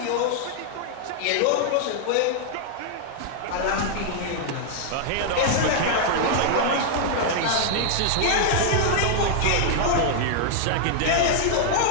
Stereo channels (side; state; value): both; different; correlation -0.01